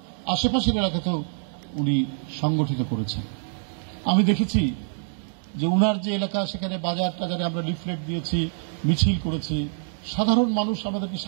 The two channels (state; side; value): silent; left; digital silence